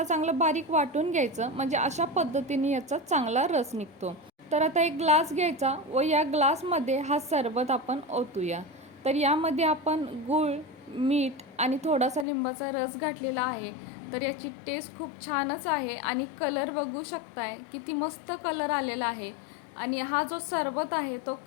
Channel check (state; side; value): drops out; right; at 12.2 s